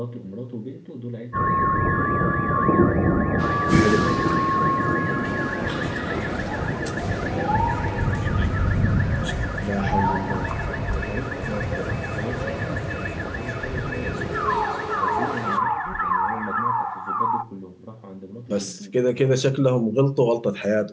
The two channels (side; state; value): both; identical; correlation 1.00